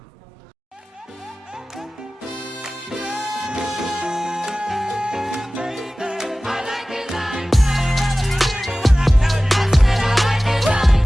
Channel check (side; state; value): both; normal; correlation 0.97